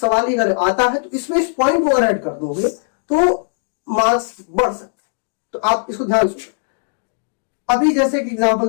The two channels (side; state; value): right; silent; digital silence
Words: ही अगर आता है तो इसमें इस पॉइंट को अगर ऐड कर दोगे तो मार्क्स बढ़ सकते हैं। तो आप इसको ध्यान सुनिए। अभी जैसे एक